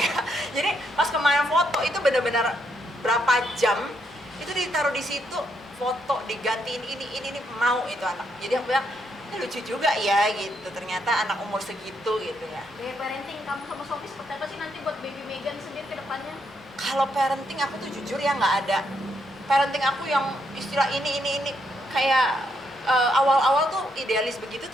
ya. Jadi pas kemarin foto itu benar-benar berapa jam itu ditaruh di situ, foto digantiin ini mau itu anak. Jadi aku bilang ini lucu juga ya gitu, ternyata anak umur segitu gitu ya. Gaya parenting kamu sama suami seperti apa sih nanti buat baby Megan sendiri ke depannya? Kalau parenting aku tuh jujur ya nggak ada parenting aku yang istilah ini kayak awal-awal tuh idealis begitu,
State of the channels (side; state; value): both; normal; correlation 0.77